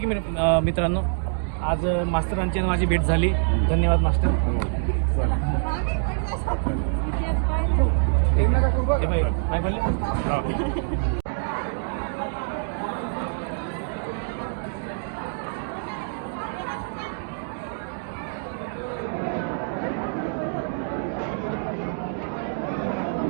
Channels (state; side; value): silent; left; digital silence